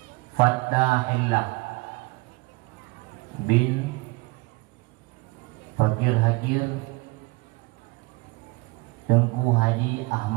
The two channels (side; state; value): left; quieter; 24.3 dB